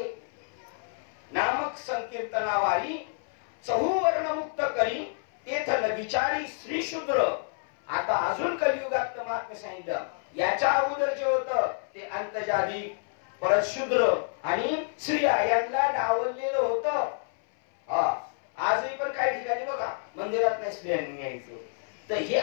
नामक संकीर्तनावारी चहूवर्ण मुक्त करी तेथल विचारी श्री शूद्र. आता अजून कलियुगात महात्म्य सांगितलं. याच्या अगोदर जे होतं ते अंतजादी, परत शूद्र आणि स्त्रिया यांना डावललेलं होतं. आजही पण काही ठिकाणी बघा मंदिरात नाही स्त्रियांनी यायचं. तर हे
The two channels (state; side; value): silent; right; 59 dB below the other